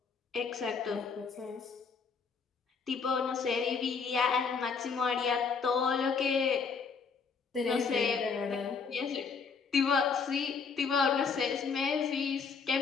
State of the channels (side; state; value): right; quieter; 5.4 dB